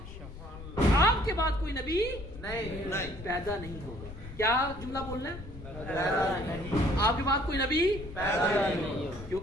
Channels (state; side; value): noise; left; rumble, 12 dB below the sound